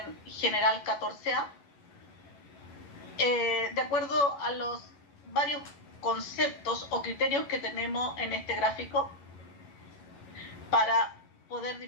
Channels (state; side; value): late; right; 11 ms